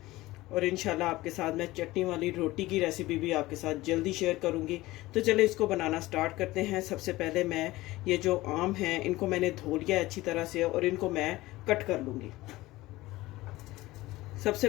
और इंशाल्लाह आपके साथ मैं चटनी वाली रोटी की रेसिपी भी आपके साथ जल्दी शेयर करूँगी। तो चले इसको बनाना स्टार्ट करते हैं। सबसे पहले मैं ये जो आम हैं इनको मैंने धो लिया अच्छी तरह से, और इनको मैं कट कर लूँगी। सबसे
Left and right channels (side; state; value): right; quieter; 18.5 dB